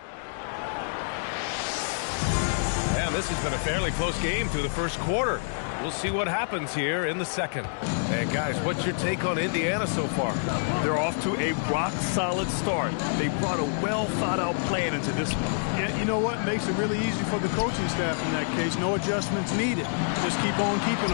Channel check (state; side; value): silent; right; digital silence